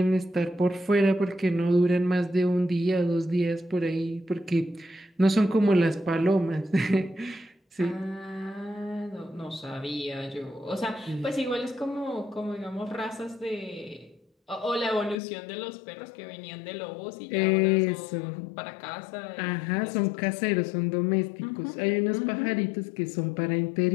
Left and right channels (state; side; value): drops out; right; at 15.2 s